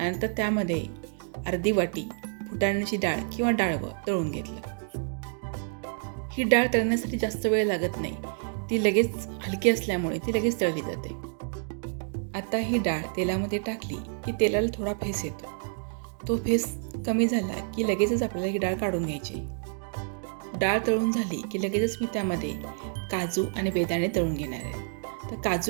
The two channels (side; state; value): left; silent; 59 dB below the other